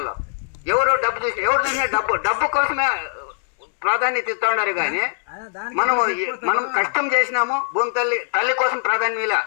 ఎవరు చూసినా డబ్బు కోసమే ప్రాధాన్యత ఇస్తూ ఉన్నారు. కానీ మనం కష్టం చేసినాము. భూమి తల్లి కోసం ప్రాధాన్యం ఇలా.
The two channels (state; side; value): silent; right; digital silence